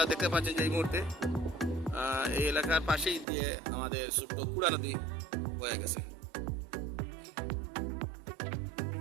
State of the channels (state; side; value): drops out; left; at 3.2 s